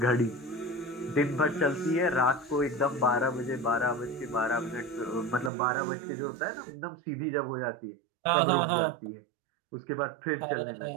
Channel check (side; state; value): left; drops out; at 5.5 s